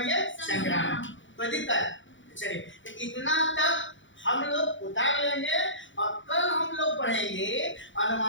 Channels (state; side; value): late; right; 0.55 ms